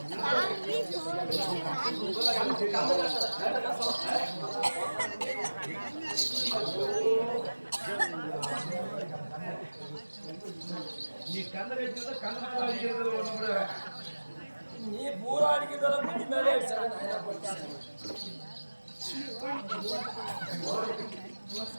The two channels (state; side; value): inverted; both; correlation -1.00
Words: நீ பூரா அடிக்கிறதால முடி மேலே